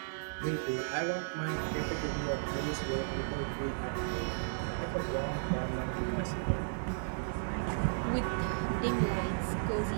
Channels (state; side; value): silent; left; 55 dB below the other